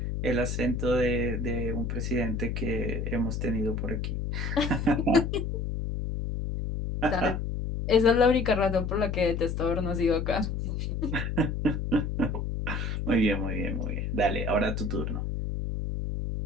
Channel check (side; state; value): left; noise; hum, 2 dB below the sound